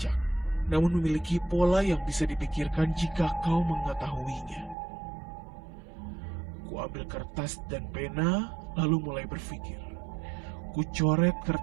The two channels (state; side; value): drops out; left; at 4.8 s